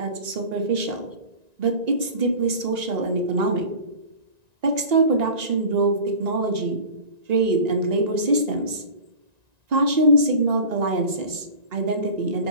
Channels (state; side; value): late; left; 1.9 ms